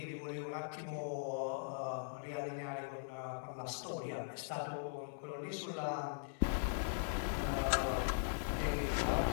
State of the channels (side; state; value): right; silent; digital silence